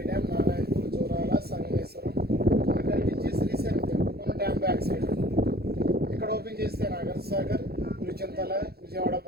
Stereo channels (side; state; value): left; late; 0.46 ms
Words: డ్యామ్, నారాయణపూర్, జోరాల, సంగమేశ్వరం కల్పించి శ్రీశైలం మన డ్యామ్ బ్యాక్ సైడ్. ఇక్కడ ఓపెన్ చేస్తే నాగర్ సాగర్, పులిచింతల, విజయవాడ